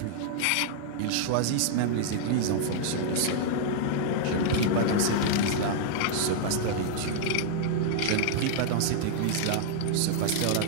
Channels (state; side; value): different; both; correlation -0.01